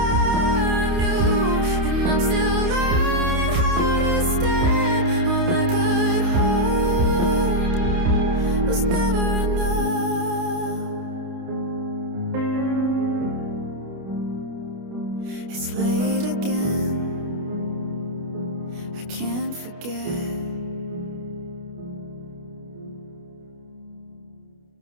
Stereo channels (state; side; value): late; left; 29 ms